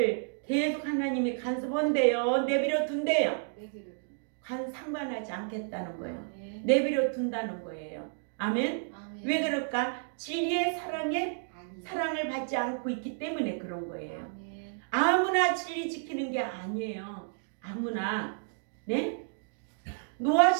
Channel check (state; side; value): silent; left; digital silence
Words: 계속 하나님이 간섭한대요. 내버려 둔대요. 상관하지 않겠다는 거예요. 아멘. 내버려 둔다는 거예요. 아멘. 아멘. 왜 그럴까? 진리의 사랑을 받지 않고 있기 때문에 그런 거예요. 아멘. 아무나 진리 지키는 게 아니에요. 아무나. 네? 노아